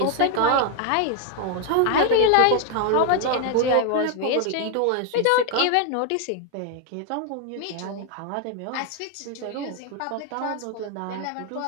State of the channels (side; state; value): both; different; correlation 0.01